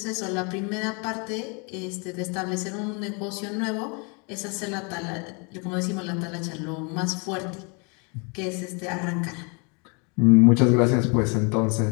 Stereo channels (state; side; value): quieter; right; 33.6 dB